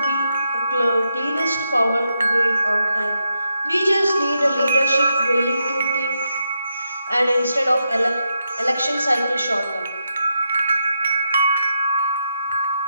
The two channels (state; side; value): inverted; both; correlation -0.83